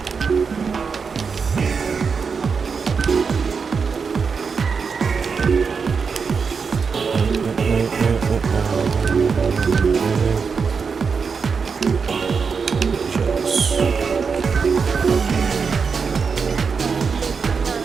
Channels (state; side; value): quieter; left; 5.5 dB